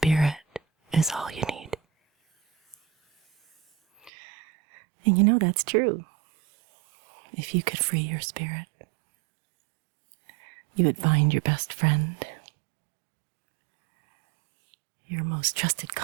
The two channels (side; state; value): left; drops out; at 4.1 s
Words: is all you need. And you know that's true. If you could free your spirit, you would find your best friend, your most trusted